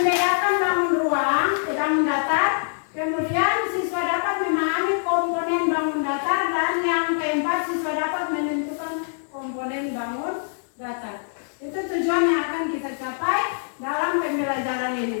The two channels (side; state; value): right; silent; digital silence